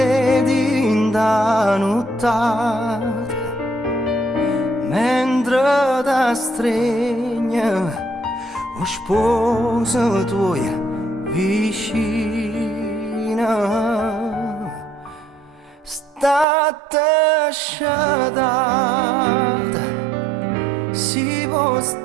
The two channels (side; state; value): left; drops out; at 16.4 s